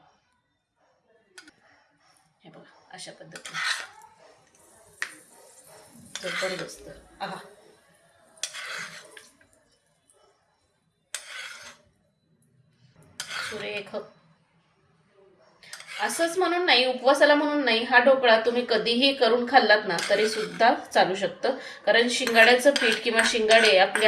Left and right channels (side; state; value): both; identical; correlation 1.00